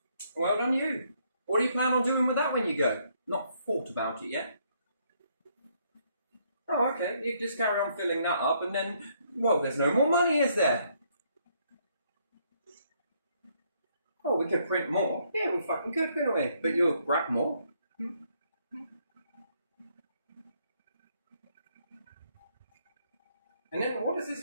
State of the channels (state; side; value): inverted; both; correlation -0.71